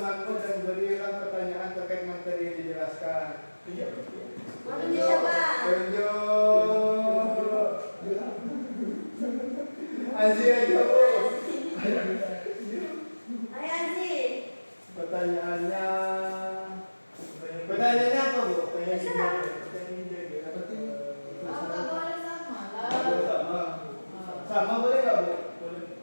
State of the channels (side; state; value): both; inverted; correlation -1.00